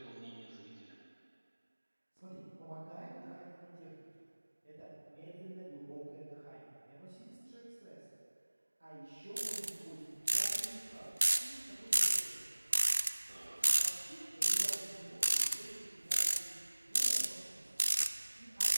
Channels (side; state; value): both; inverted; correlation -1.00